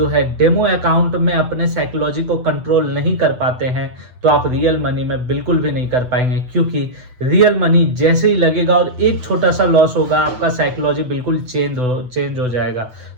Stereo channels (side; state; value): left; late; 8.0 ms